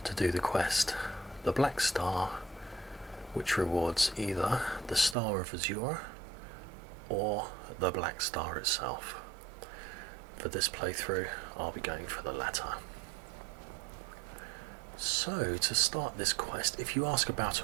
to do the quest, the Black Star, which rewards either the Star of Azura or the Black Star itself. For this playthrough, I'll be going for the latter. So, to start this quest, if you ask about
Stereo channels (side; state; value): left; drops out; at 5.2 s